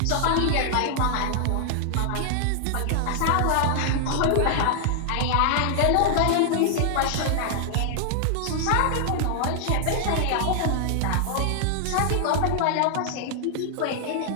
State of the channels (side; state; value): both; different; correlation -0.01